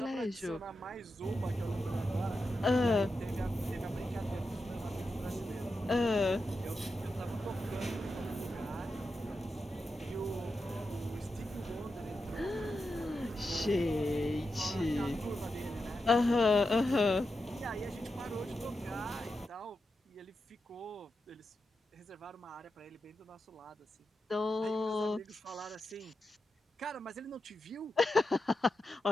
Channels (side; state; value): both; normal; correlation 0.88